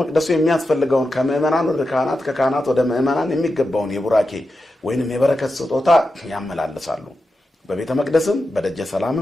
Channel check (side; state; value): both; normal; correlation 0.89